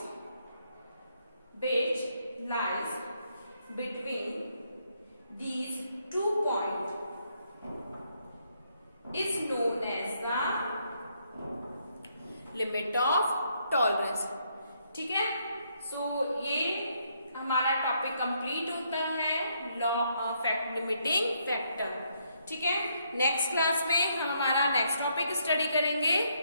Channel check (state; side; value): inverted; both; correlation -0.74